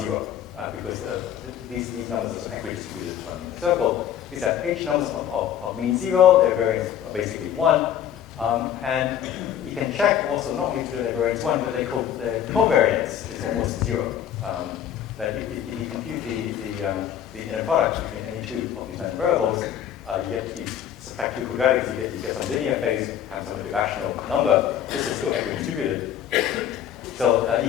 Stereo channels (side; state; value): right; quieter; 10.0 dB